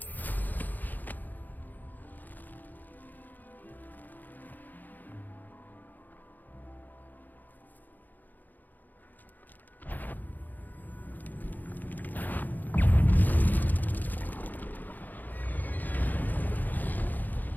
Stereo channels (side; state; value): right; late; 0.085 ms